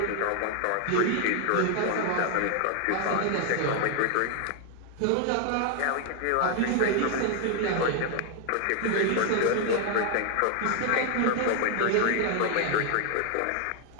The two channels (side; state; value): both; different; correlation 0.00